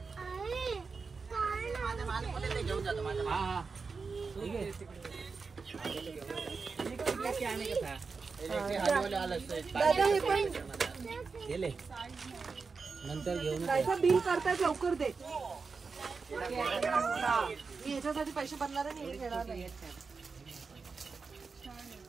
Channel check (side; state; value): left; quieter; 4.8 dB